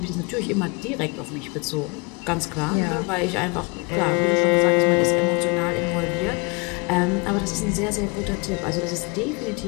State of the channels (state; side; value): quieter; right; 30.5 dB